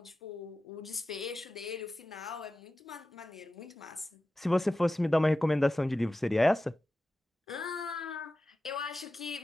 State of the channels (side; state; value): both; normal; correlation 0.93